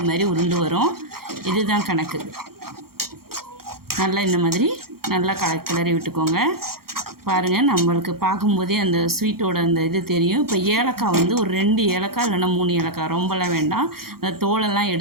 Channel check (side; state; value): left; late; 0.94 ms